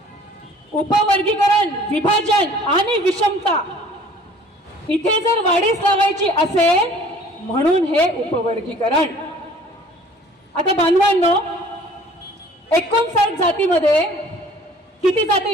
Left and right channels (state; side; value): normal; both; correlation 0.52